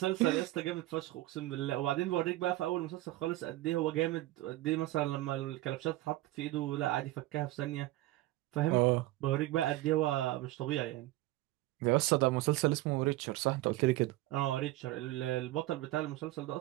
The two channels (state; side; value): quieter; left; 17.3 dB